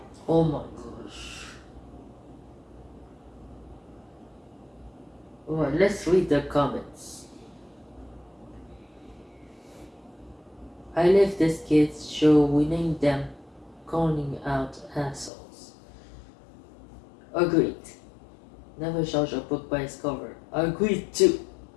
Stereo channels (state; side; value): drops out; right; at 15.3 s